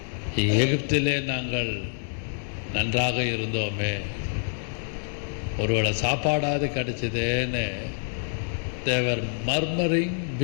எகிப்திலே நாங்கள் நன்றாக இருந்தோமே, ஒருவேளை சாப்பாடாவது கிடைச்சதேன்னு they were murmuring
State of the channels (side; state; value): right; silent; 59 dB below the other